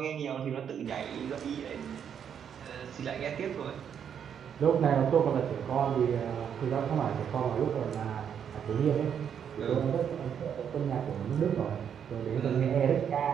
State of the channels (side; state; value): left; quieter; 8.2 dB